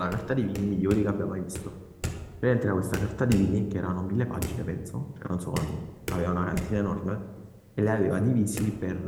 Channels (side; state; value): both; identical; correlation 1.00